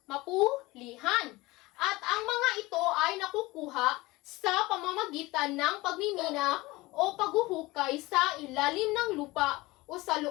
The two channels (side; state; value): right; quieter; 20.9 dB